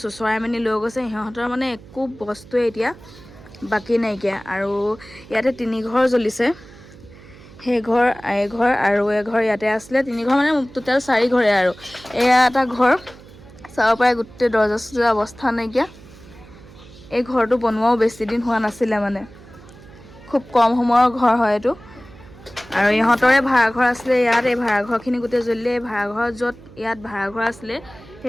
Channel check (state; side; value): noise; right; hum, 21 dB below the sound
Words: চুচৰাই মেলি লৈ গৈছে সিহঁতৰ মানে একো বস্তুৱে এতিয়া বাকী নাইকিয়া আৰু ইয়াতে 3 ঘৰ জ্বলিছে সেই ঘৰ এঘৰ আৰু এঘৰ ইয়াতে আছিলে 3 ঘৰ মানে টোটেল 4 ঘৰে আৰু এয়া এটা ঘৰ চাব পাৰে গোটেই দৰ্জা চৰ্জা অৱস্থা নাইকিয়া এই ঘৰটো বনোৱাও বেছি দিন হোৱা নাছিলে মানে খুব কম সময়ৰ ঘৰ হয় এইটো আৰু ইহঁতৰে ভাড়াঘৰ আছিলে ইয়াত এই ভাড়াঘৰখিনি গোটেই জ্বলিলে এই ভাড়াঘৰ য'ত ইয়াত ভাড়াঘৰ আছিলে